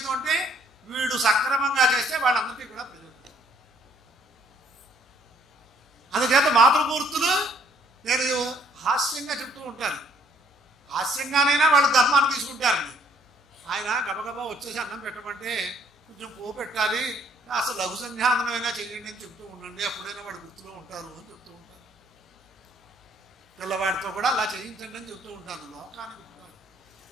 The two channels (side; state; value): both; normal; correlation 0.64